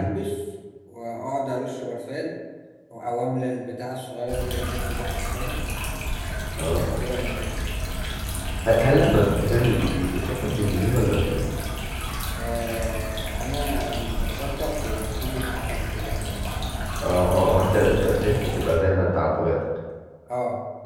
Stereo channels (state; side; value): identical; both; correlation 1.00